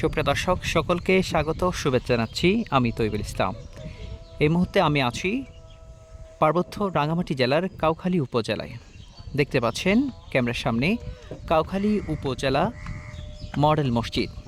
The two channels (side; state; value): both; identical; correlation 1.00